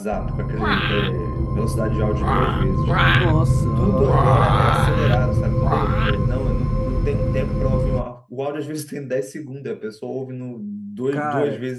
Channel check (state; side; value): identical; both; correlation 1.00